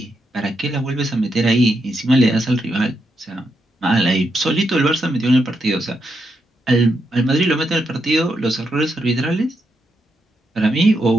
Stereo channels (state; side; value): normal; both; correlation 0.82